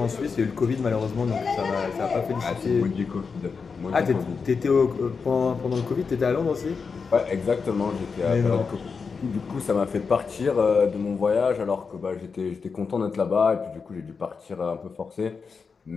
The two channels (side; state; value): right; quieter; 5.3 dB